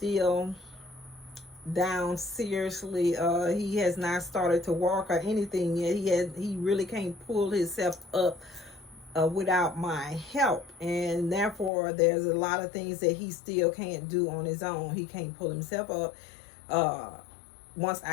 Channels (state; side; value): drops out; right; at 11.7 s